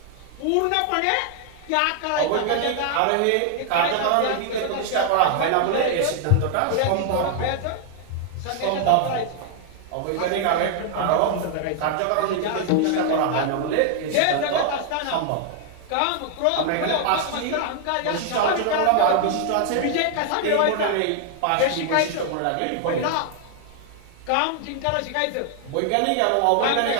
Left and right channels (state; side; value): different; both; correlation 0.00